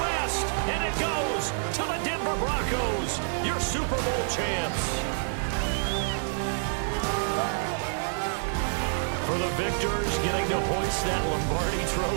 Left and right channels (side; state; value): left; silent; digital silence